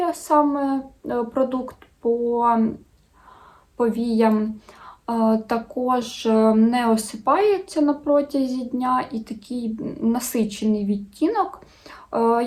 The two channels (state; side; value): identical; both; correlation 1.00